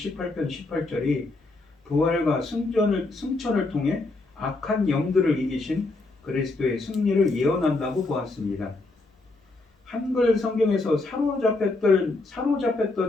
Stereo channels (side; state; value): right; quieter; 3.2 dB